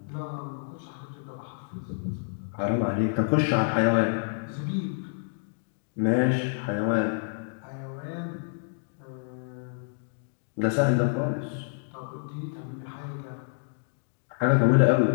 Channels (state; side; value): silent; right; digital silence